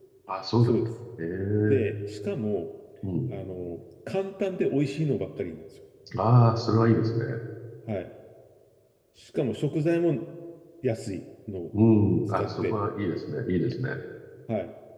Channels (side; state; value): both; identical; correlation 1.00